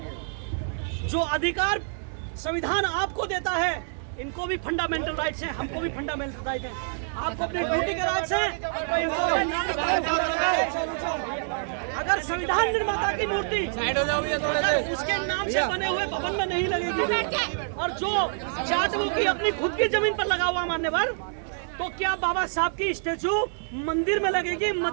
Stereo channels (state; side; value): silent; left; digital silence